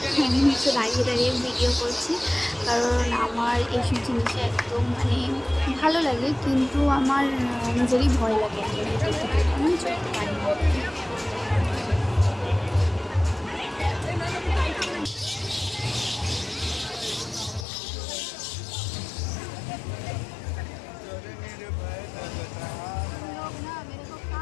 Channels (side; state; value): right; drops out; at 17.7 s